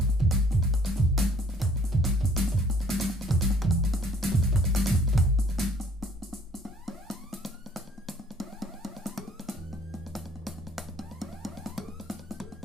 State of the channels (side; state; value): both; normal; correlation 0.58